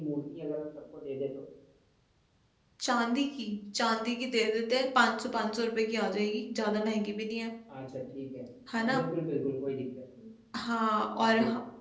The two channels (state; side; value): identical; both; correlation 1.00